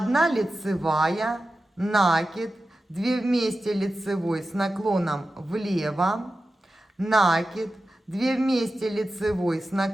лицевая, накид, 2 вместе лицевой с наклоном влево, накид, 2 вместе лицевой с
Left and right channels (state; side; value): normal; both; correlation 0.93